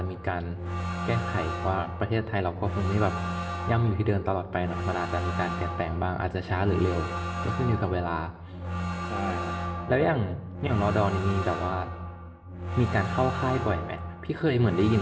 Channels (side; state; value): both; identical; correlation 1.00